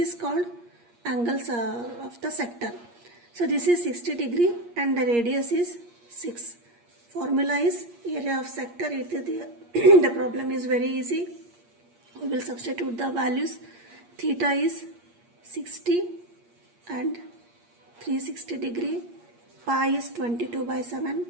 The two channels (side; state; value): left; late; 8.5 ms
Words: called angles of the sector. So this is 60 degree and the radius is 6. Formula is area of sector. The problem is very easy. We will substitute the values. Theta is 60 and 360 degree. Pi is 22 by 7